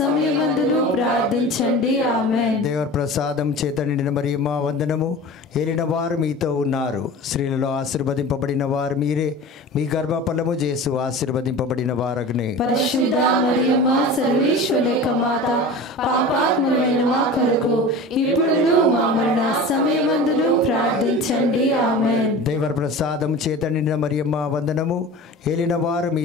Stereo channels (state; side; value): normal; both; correlation 0.35